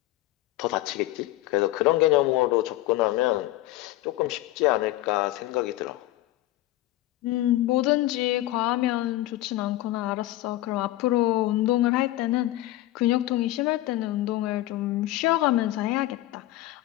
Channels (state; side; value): quieter; right; 16.3 dB